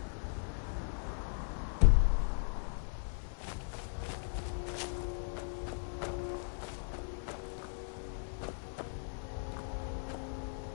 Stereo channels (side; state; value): right; silent; 53 dB below the other